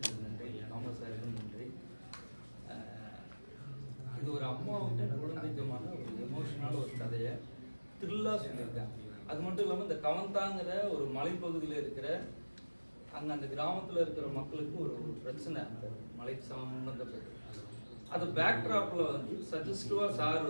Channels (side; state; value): both; inverted; correlation -1.00